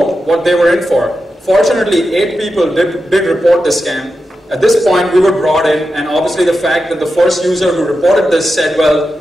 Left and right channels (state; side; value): normal; both; correlation 0.90